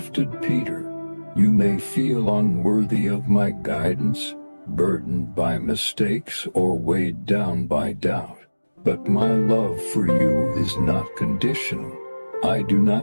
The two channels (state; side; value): inverted; both; correlation -1.00